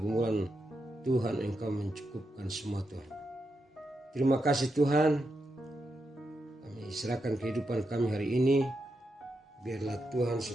Tuhan, Engkau mencukupkan semua Tuhan. Terima kasih Tuhan. Kami serahkan kehidupan kami hari ini. Biarlah Tuhan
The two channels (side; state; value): both; normal; correlation 0.85